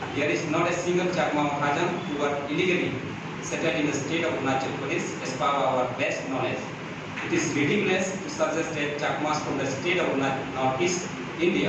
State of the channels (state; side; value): identical; both; correlation 1.00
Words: There is not a single Chakma or Hazan who are illegally settled in the state of Arunachal Pradesh as per our best knowledge. It is ridiculous to suggest that Chakmas from the state of Northeast